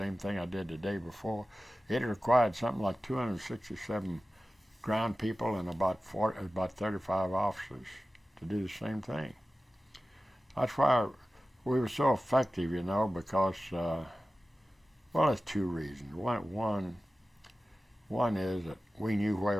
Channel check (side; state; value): both; normal; correlation 0.95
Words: thing I did the day before. It required something like 267 ground people and about 35 officers to do the same thing. That's why we were so effective, because there's 2 reasons. One is that we knew